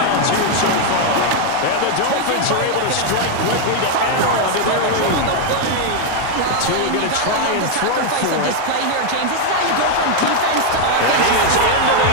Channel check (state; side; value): different; both; correlation 0.01